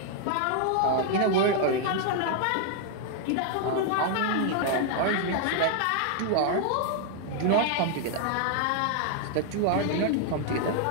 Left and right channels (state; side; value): different; both; correlation 0.00